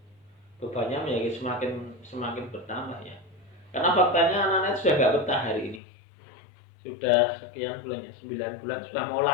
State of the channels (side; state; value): right; drops out; at 5.8 s